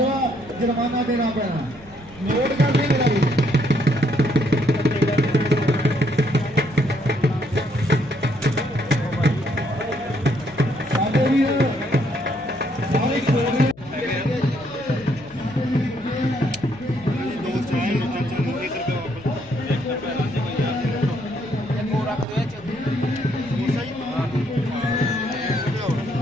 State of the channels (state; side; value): noise; left; hum, 22 dB below the sound